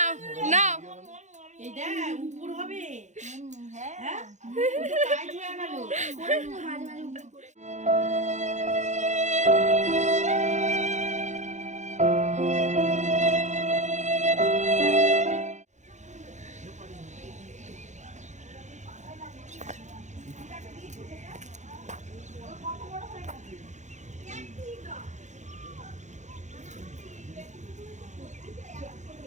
না এই দেখ উপর হবে। হ্যাঁ কাজ হয়ে গেল।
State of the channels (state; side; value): late; left; 0.34 ms